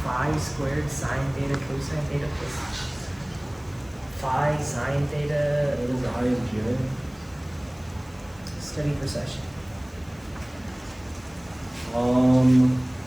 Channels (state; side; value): noise; left; hiss, 27 dB below the sound